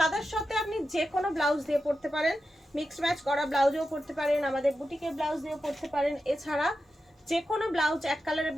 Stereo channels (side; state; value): both; normal; correlation 0.90